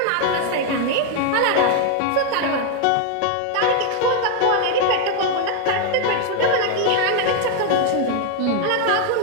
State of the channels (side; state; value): both; different; correlation 0.01